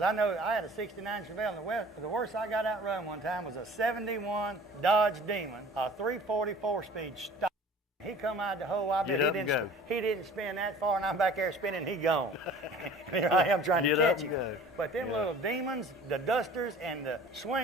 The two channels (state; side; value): normal; both; correlation 0.46